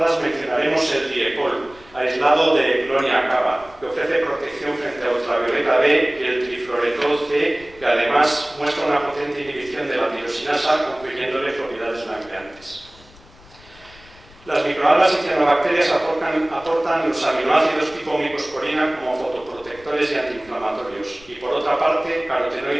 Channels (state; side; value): noise; left; rumble, 24 dB below the sound